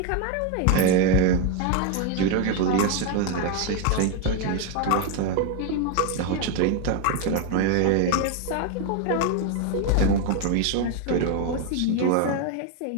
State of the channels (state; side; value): different; both; correlation 0.01